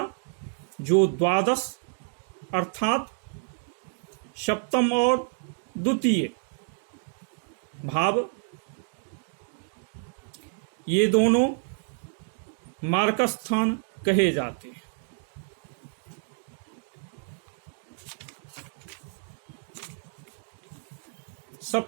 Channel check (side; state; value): left; silent; 58 dB below the other